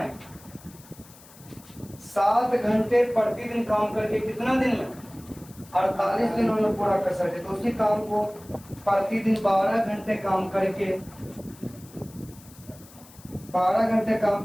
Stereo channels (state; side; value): noise; left; hiss, 22 dB below the sound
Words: 7 घंटे प्रतिदिन काम करके कितना दिन में? 48 दिनों में पूरा कर सकते। तो उसी काम को प्रतिदिन 12 घंटे काम करके